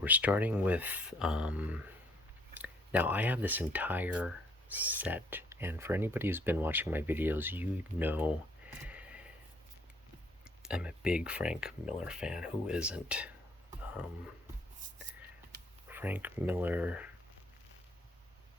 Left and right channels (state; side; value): normal; both; correlation 0.64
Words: starting with. Now I have this entire set, and for anybody who's been watching my videos, you know I'm a big Frank Miller fan. Who isn't? Frank Miller